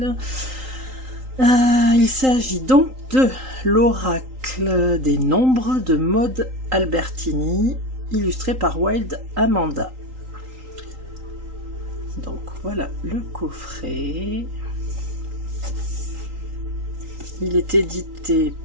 Il s'agit donc de l'oracle des nombres de Maud Albertini, illustré par Wild Amanda. Donc voilà le coffret. Il est édité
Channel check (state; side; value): late; left; 3.8 ms